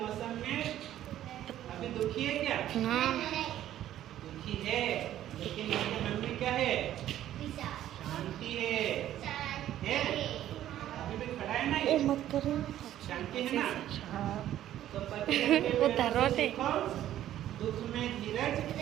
में अभी दुखी है क्या? हाँ। दुखी है, लेकिन इसके मन में क्या है? शांति है। अभी भी खड़ा है ना ये? मत करो। शांति है ना? तो पतझड़ के वो पेड़ धरोटे। से सीखो दुख में धीरज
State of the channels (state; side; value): quieter; left; 12.3 dB